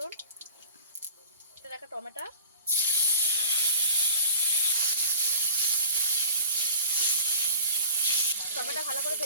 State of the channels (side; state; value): both; inverted; correlation -0.41